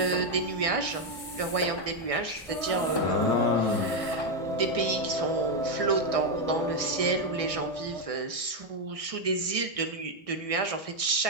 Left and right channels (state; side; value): late; right; 2.6 ms